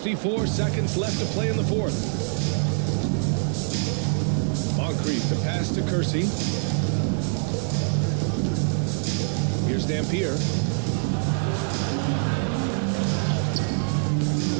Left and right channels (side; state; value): left; silent; 62 dB below the other